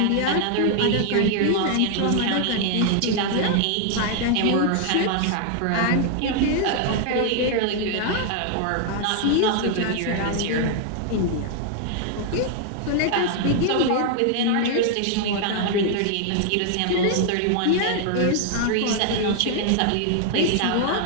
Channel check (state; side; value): different; both; correlation 0.00